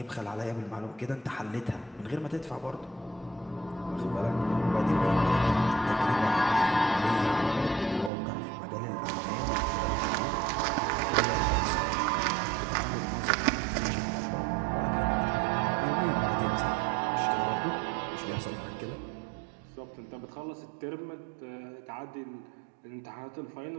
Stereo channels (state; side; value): drops out; left; at 8.1 s